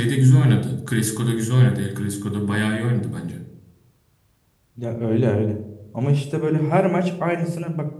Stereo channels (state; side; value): identical; both; correlation 1.00